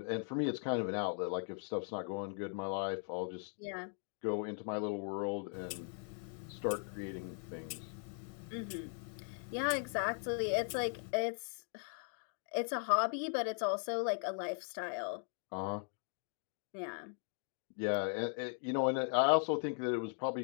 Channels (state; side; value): silent; right; 52 dB below the other